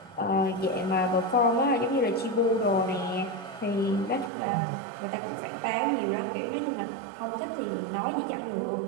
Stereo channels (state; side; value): drops out; left; at 4.3 s